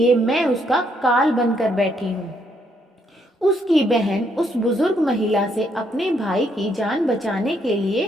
मैं उसका काल बनकर बैठी हूँ। उसकी बहन उस बुजुर्ग महिला से अपने भाई की जान बचाने के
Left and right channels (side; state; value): both; normal; correlation 0.73